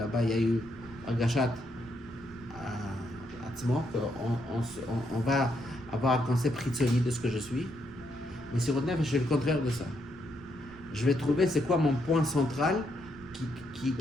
il y a eu un gachat à Tzmo, qu'on va avoir un concept ritzoni de ce que je suis. Mais sur le nefesh, c'est le contraire de ça. Je vais trouver c'est quoi mon point central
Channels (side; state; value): right; noise; rumble, 21 dB below the sound